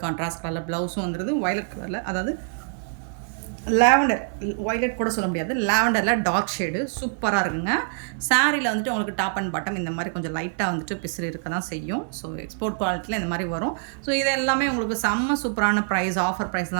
கான்ட்ராஸ்ட் கலரில் ப்ளவுஸும் வந்துடுது. வயலட் கலரில், அதாவது லாவெண்டர், வயலட் கூட சொல்ல முடியாது, லாவெண்டரில் டார்க் ஷேடு சூப்பராக இருக்குங்க. சாரியில் வந்துட்டு உங்களுக்கு டாப் அண்ட் பாட்டம் இந்த மாதிரி கொஞ்சம் லைட்டாக வந்துட்டு பிசிறு இருக்க தான் செய்யும். ஸோ எக்ஸ்போர்ட் குவாலிட்டியில் இந்த மாதிரி வரும். ஸோ இது எல்லாமே உங்களுக்கு செம்ம சூப்பரான ப்ரைஸ், ஆஃபர் ப்ரைஸ்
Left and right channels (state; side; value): silent; left; digital silence